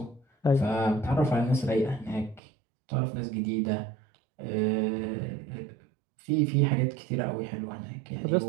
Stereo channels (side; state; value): left; drops out; at 2.4 s